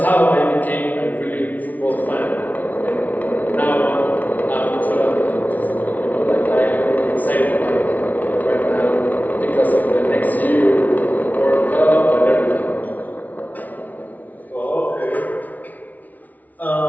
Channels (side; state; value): right; late; 0.076 ms